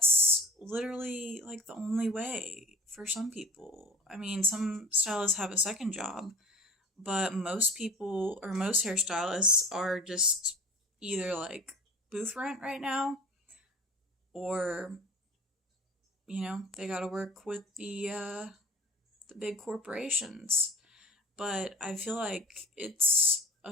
literally like the only way for some people. I mean, some stylists have a second job, but most people or most hairstylists are just either like booth rent right now, or they got to work with the big corporations. But I feel like it's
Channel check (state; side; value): normal; both; correlation 0.40